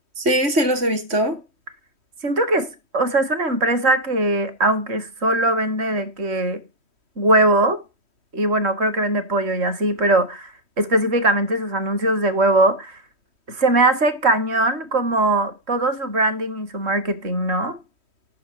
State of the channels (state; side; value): late; left; 3.1 ms